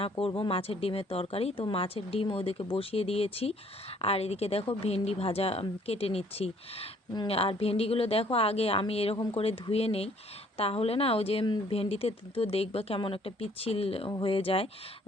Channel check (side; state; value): both; normal; correlation 0.61